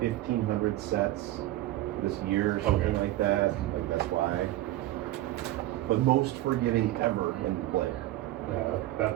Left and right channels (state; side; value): quieter; left; 15.8 dB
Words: sets this year or something like that. Like that's why. But most forgiving ever in the play. Yeah,